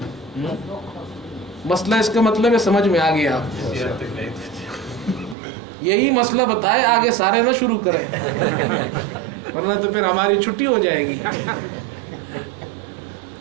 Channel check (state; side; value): drops out; left; at 5.4 s